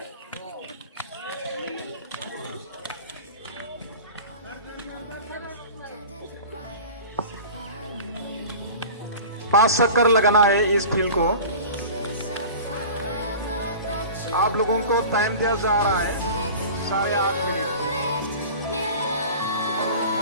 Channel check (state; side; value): inverted; both; correlation -0.38